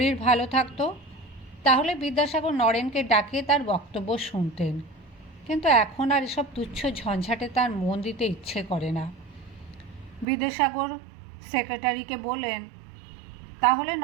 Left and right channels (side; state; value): left; drops out; at 10.2 s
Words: ভালো থাকতো তাহলে বিদ্যাসাগর নরেনকে ডাকিয়ে তার বক্তব্য শুনতেন, কিন্তু এখন আর এসব তুচ্ছ ঝঞ্ঝাটে তার মন দিতে ইচ্ছে করে না। বিদ্যাসাগর সেক্রেটারিকে বললেন, তাহলে